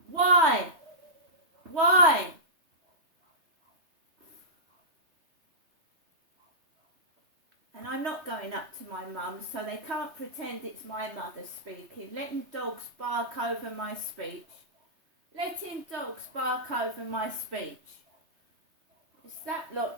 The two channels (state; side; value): late; left; 3.3 ms